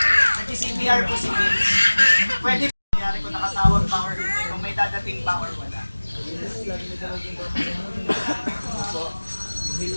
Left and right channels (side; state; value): both; inverted; correlation -1.00